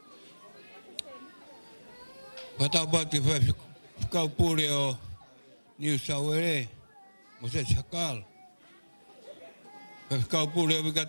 Pagkatapos ya kaupuri o New Sawere. Moses Sakal. Kaupuri o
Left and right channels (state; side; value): inverted; both; correlation -1.00